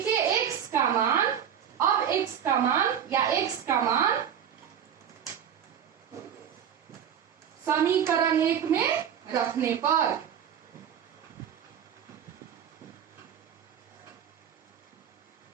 x का मान, अब x का मान या x का मान समीकरण 1 में रखने पर।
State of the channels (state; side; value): quieter; left; 8.7 dB